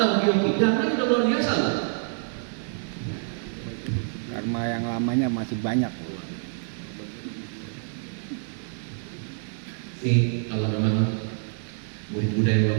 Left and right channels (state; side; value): silent; left; 60 dB below the other